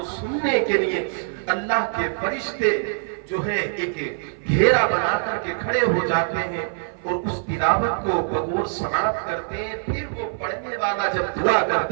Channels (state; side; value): silent; left; 56 dB below the other